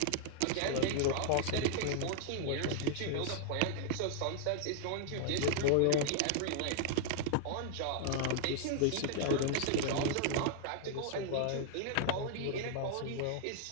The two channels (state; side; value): different; both; correlation -0.01